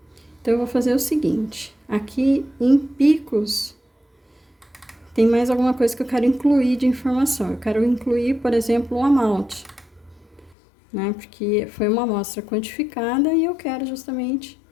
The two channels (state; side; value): drops out; right; at 10.6 s